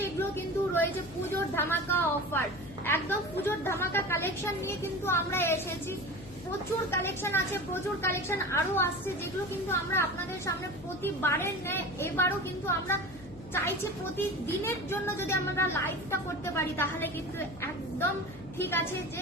এগুলো কিন্তু রয়েছে পুজোর ধামাকা অফার, একদম পুজোর ধামাকা কালেকশন নিয়ে কিন্তু আমরা এসেছি। প্রচুর কালেকশন আছে, প্রচুর কালেকশন আরো আসছে, যেগুলো কিন্তু আমরা আপনাদের সামনে প্রতিবারের ন্যায় এবারও কিন্তু আমরা চাইছি প্রতিদিনের জন্য যদি আমরা লাইভটা করতে পারি তাহলে কিন্তু একদম ঠিক আছে যে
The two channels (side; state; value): left; noise; hum, 19 dB below the sound